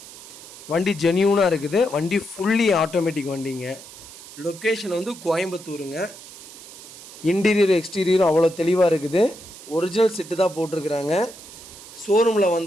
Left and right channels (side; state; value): right; noise; hiss, 17 dB below the sound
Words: வண்டி ஜென்யூனாக இருக்குது. வண்டி ஃபுல்லி ஆட்டோமேட்டிக் வண்டிங்க. லொக்கேஷன் வந்து கோயம்புத்தூருங்க. இன்டீரியர் எக்ஸ்டீரியரும் அவ்வளோ தெளிவாக இருக்குது. ஒரிஜினல் செட்டு தான் போட்டிருக்கிறாங்க. ஷோரூமில்